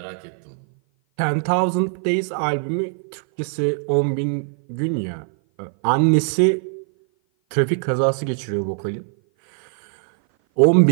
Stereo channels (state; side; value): silent; left; 56 dB below the other